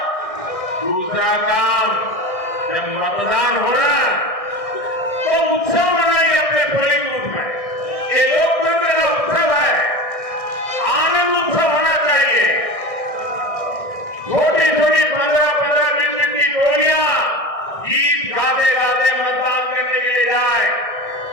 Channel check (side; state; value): right; late; 1.6 ms